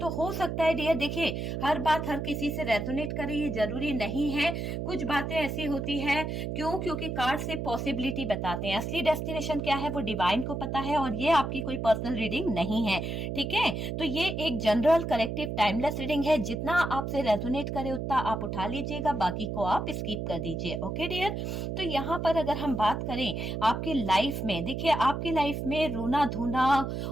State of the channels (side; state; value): right; noise; hum, 3 dB below the sound